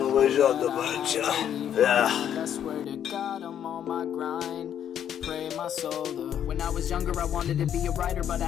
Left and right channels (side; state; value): right; quieter; 9.6 dB